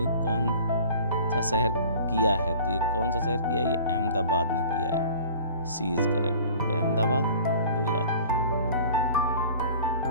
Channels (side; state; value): both; inverted; correlation -0.45